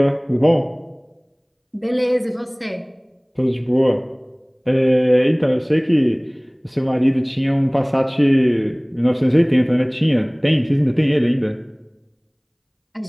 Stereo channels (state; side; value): identical; both; correlation 1.00